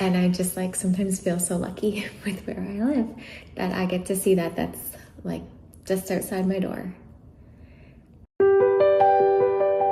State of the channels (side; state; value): both; identical; correlation 1.00